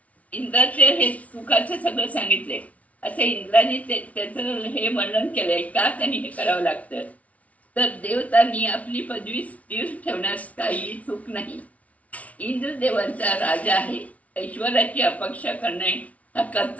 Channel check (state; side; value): late; right; 0.068 ms